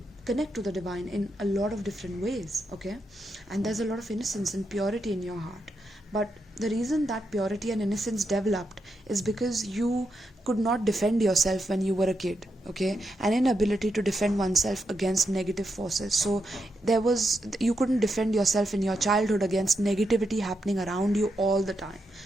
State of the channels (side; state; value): both; normal; correlation 0.84